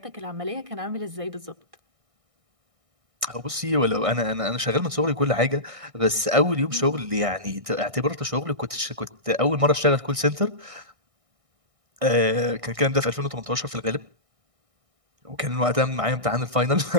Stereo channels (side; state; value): left; late; 1.6 ms